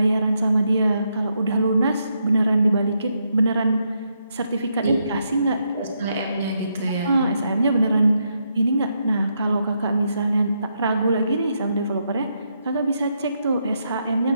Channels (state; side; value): inverted; both; correlation -0.80